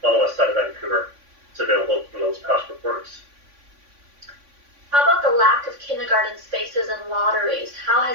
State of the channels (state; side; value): late; left; 3.5 ms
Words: on the west side of Vancouver. It's available from those past reports. How about the lack of kindergarten spaces and lotteries? How